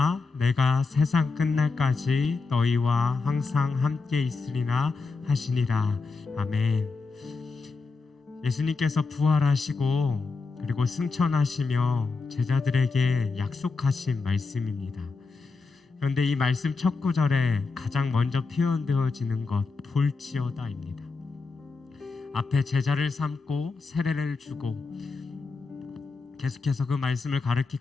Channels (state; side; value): quieter; right; 4.2 dB